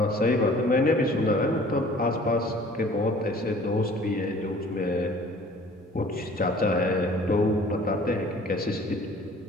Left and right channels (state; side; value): normal; both; correlation 0.51